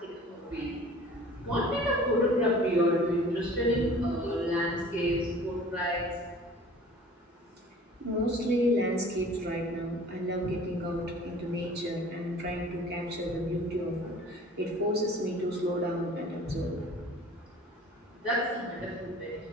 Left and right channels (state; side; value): normal; both; correlation 0.47